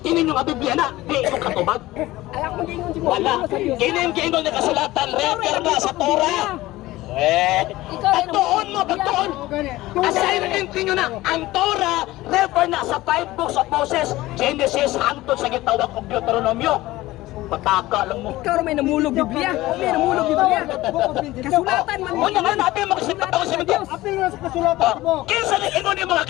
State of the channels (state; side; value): quieter; right; 17.7 dB